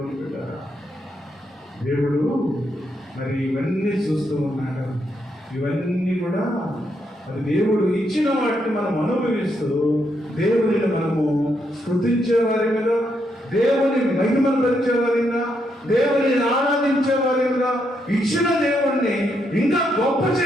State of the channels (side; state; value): both; normal; correlation 0.78